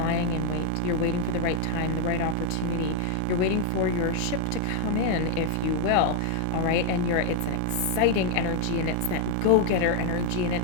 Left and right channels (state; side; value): different; both; correlation 0.01